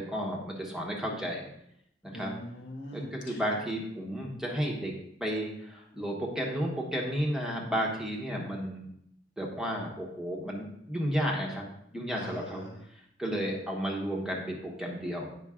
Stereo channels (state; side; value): normal; both; correlation 0.66